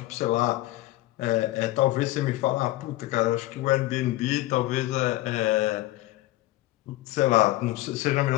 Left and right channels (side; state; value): right; quieter; 17.4 dB